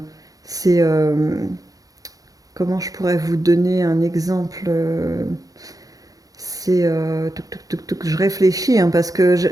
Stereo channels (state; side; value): late; left; 0.17 ms